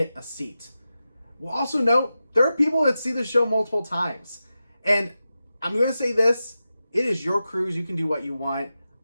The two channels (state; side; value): inverted; both; correlation -0.92